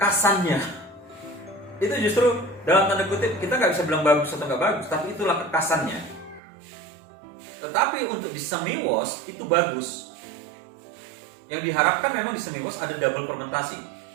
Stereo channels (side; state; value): left; drops out; at 6.4 s